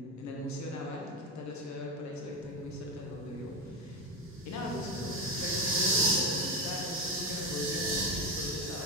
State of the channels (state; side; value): normal; both; correlation 0.17